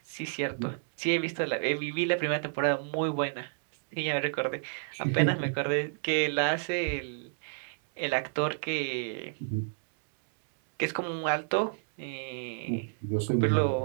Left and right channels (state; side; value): silent; left; digital silence